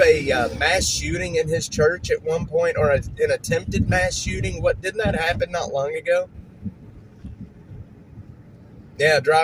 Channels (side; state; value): both; identical; correlation 1.00